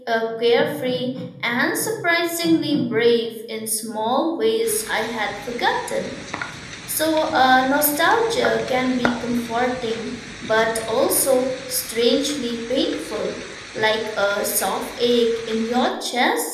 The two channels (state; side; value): identical; both; correlation 1.00